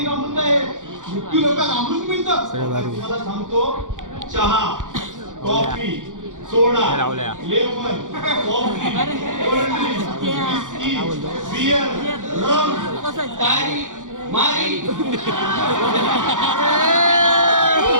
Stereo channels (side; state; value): left; late; 0.87 ms